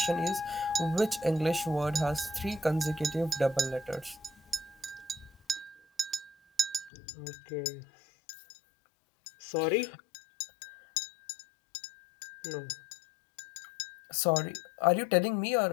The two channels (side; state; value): right; drops out; at 6.9 s